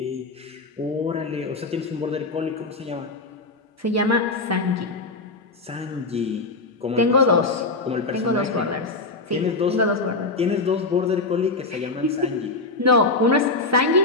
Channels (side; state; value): right; quieter; 3.5 dB